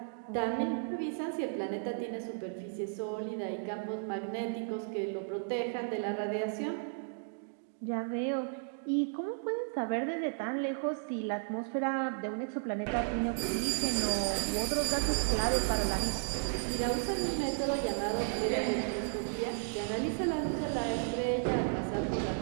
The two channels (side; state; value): left; silent; digital silence